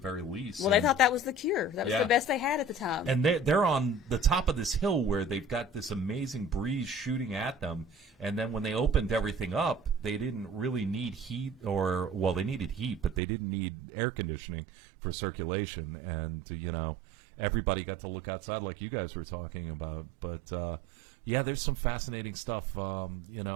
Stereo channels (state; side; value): drops out; left; at 13.2 s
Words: least. Well, they thought that was the cure. That was the best they had at the time. And they're on the top of this hill where they've got this amazing breeze shooting at them. And then when they opened everything up, they didn't really need heat they needed heat, but they didn't need air conditioning for circulation. And, everybody got to look outside like you guys were talking about. But, yeah, there's some fascinating stuff.